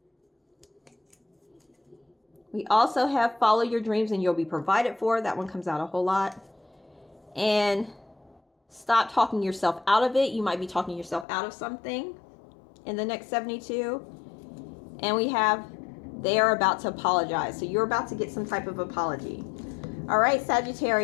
We also have follow your dreams and you'll be provided for. That one comes out a whole lot. And stop talking yourself out of it. You might be talking yourself out of something in the next 72. And we have they are about to apologize. So you're about to get some type of apology. All right,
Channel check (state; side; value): drops out; right; at 11.2 s